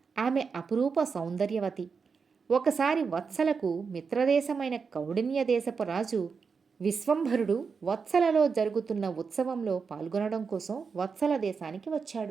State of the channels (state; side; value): quieter; left; 5.4 dB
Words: ఆమె అపురూప సౌందర్యవతి. ఒకసారి వత్సలకు మిత్రదేశమైన కౌడిన్య దేశపు రాజు విశ్వంభరుడు వత్సలలో జరుగుతున్న ఉత్సవంలో పాల్గొనడం కోసం వత్సల దేశానికి